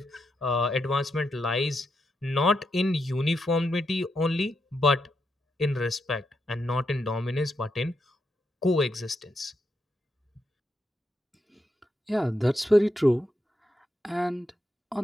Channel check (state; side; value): normal; both; correlation 0.83